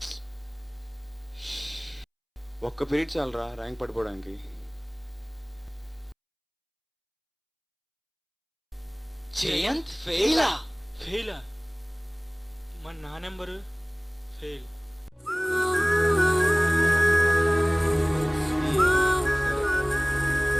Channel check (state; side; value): identical; both; correlation 1.00